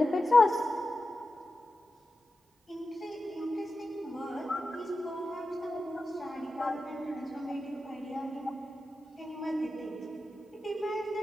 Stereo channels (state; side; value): normal; both; correlation 0.92